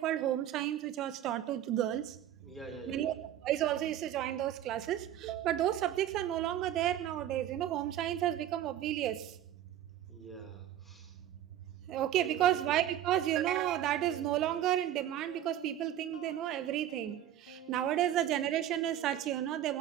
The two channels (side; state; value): left; quieter; 11.7 dB